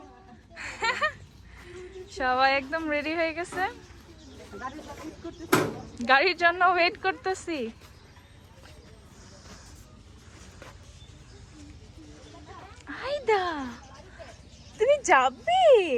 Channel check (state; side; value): identical; both; correlation 1.00